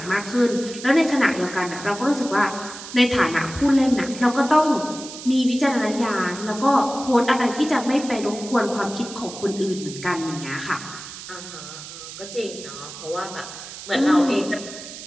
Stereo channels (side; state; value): right; noise; hiss, 12 dB below the sound